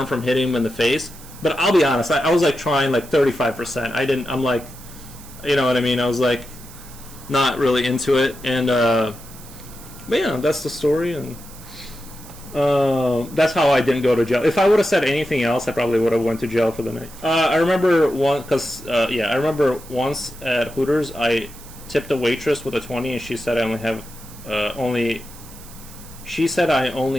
from hitting him in the face. But I'll be honest, I was like trying like 35%. I'm like, you know what I mean? I was like not really into it. And but yeah, that's the story, and that's how I didn't go to jail. If I would have said anything else, I probably would have went to jail for the night. I remember I remember once at Hooters, I tipped a waitress with a 20, and she said I only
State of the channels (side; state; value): right; noise; hiss, 19 dB below the sound